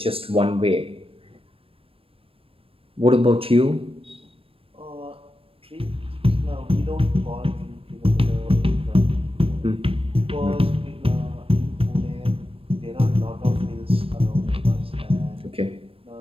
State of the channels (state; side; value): late; left; 0.27 ms